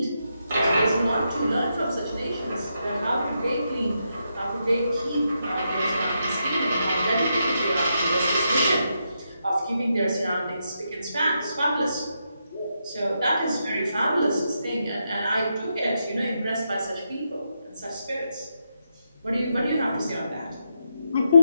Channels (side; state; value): both; inverted; correlation -0.83